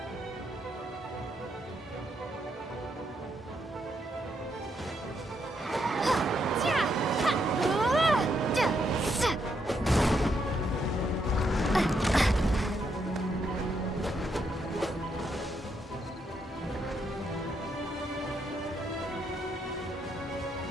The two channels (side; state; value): both; normal; correlation 0.78